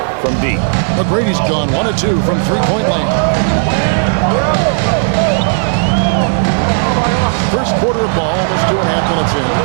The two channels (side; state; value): left; silent; digital silence